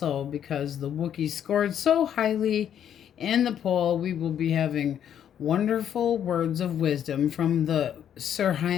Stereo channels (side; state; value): right; quieter; 9.5 dB